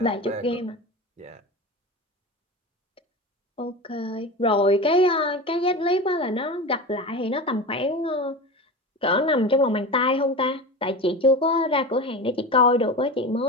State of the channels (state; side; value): normal; both; correlation 0.27